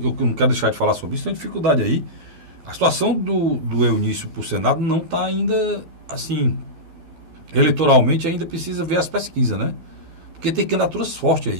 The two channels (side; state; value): left; late; 12 ms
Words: eu não quero deixar de falar sobre isso, tem uma dificuldade aí. A situação do Eunício para o Senado não está ainda, assim, eleitoralmente ainda precisa ver as pesquisas, né? Porque tem candidaturas fortes